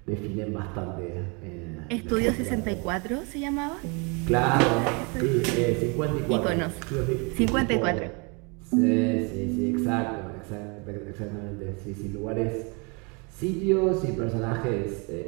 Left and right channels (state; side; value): quieter; left; 31.8 dB